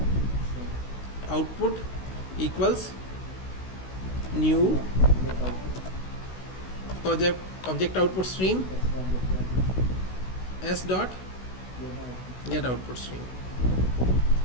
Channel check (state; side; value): late; right; 16 ms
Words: Output equals new object output stream s dot get output stream.